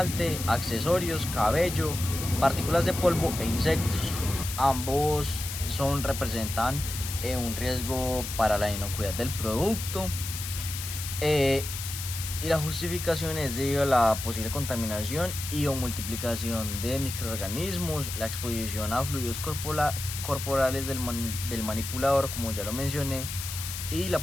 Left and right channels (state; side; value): noise; left; hiss, 7 dB below the sound